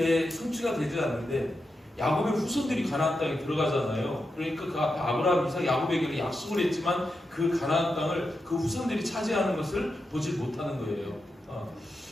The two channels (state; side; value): normal; both; correlation 0.88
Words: 성취가 되지 않는데 야곱의 후손들이 가나안 땅에 들어가잖아요. 그러니까 그 앞에 아브라함, 이삭, 야곱에게 약속을 했지만 그 가나안 땅을 그 후손들이 차지하는 것을 보지 못하는 거예요.